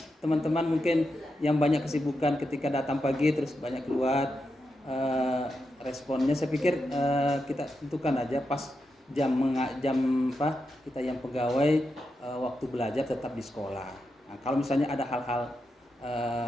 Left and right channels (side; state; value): both; normal; correlation 0.87